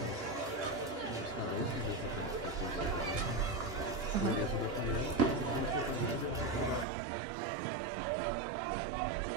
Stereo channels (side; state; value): left; drops out; at 6.9 s